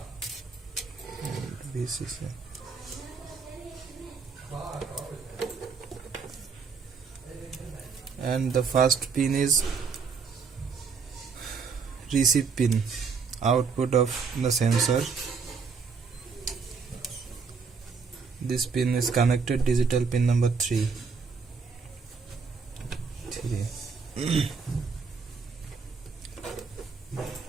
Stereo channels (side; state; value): left; quieter; 5.3 dB